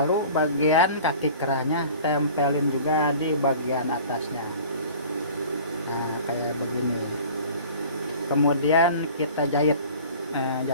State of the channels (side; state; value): both; inverted; correlation -0.44